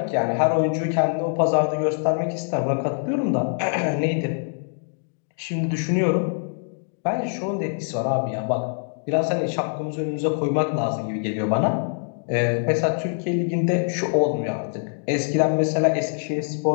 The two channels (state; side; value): silent; right; 63 dB below the other